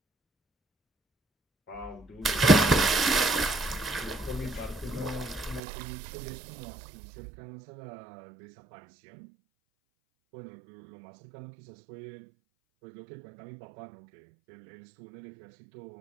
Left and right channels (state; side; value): drops out; left; at 5.6 s